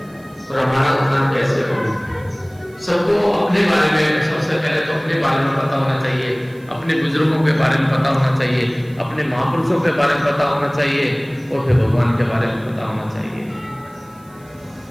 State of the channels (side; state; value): right; noise; hiss, 29 dB below the sound